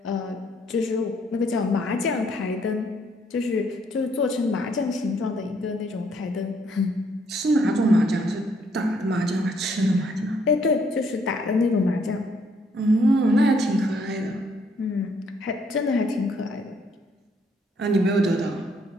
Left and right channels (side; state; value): both; normal; correlation 0.68